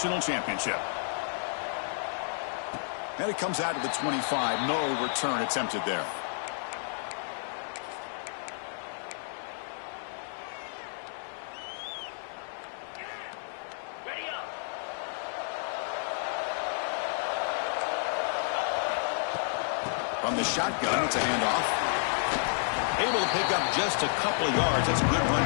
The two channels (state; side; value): silent; right; 57 dB below the other